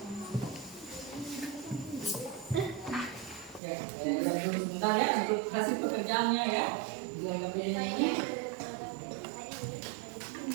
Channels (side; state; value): left; drops out; at 3.6 s